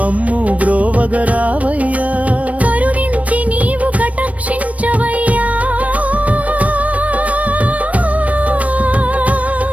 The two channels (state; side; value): late; left; 0.067 ms